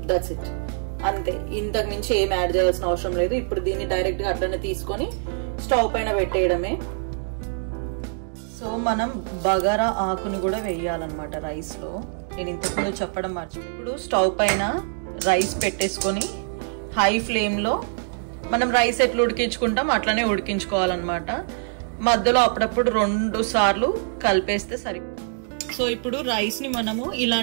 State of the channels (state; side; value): silent; left; digital silence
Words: That's it, అంతే. ఇంతకు మించి ఏం యాడ్ చేయాల్సిన అవసరం లేదు. ఇప్పుడు దీన్ని డైరెక్ట్ గా అట్లనే తీసుకొని స్టవ్ పైన పెట్టేయడమే. సో మనం బగారా ఆకుని కూడా వేయాలన్నమాట రైస్ లో. నేను ఇంతకుముందు చెప్పడం మర్చిపోయి. ఇప్పుడు స్టవ్ పైన రైస్ పెట్టేసుకొని హై ఫ్లేమ్ లో మనం రైస్ ఎట్లా ఉడికించుకుంటాం అట్లనే ఉడికించుకోవాలన్నమాట. మధ్యలో అప్పుడప్పుడు 2 సార్లు కలిపేస్తే సరి. సో ఇప్పుడు రైస్ ని మనము